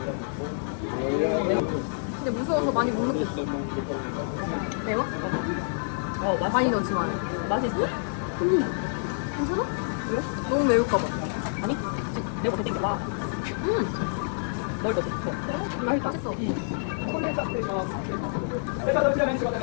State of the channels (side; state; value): right; silent; digital silence